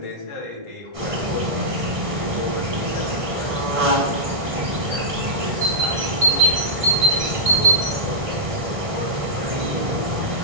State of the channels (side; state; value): left; late; 1.6 ms